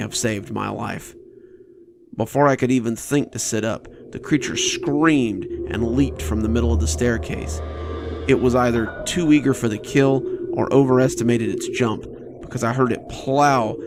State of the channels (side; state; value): both; identical; correlation 1.00